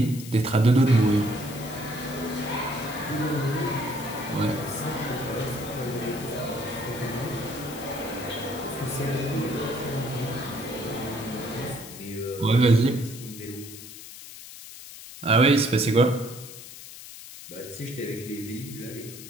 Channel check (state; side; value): noise; left; hiss, 14 dB below the sound